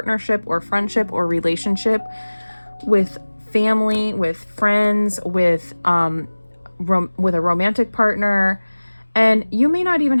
or friendship or relationship with family, with friends, with a romantic partner. And you may not even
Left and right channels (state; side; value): inverted; both; correlation -1.00